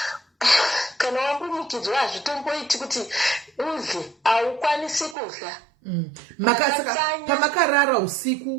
kana wambunyikidzwa hazvitomboiti kuti udle, haukwanisi kudla. Pamakarara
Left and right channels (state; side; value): drops out; left; at 5.2 s